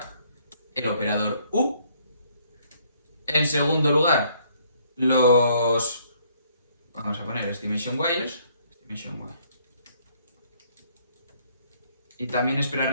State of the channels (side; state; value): both; inverted; correlation -0.66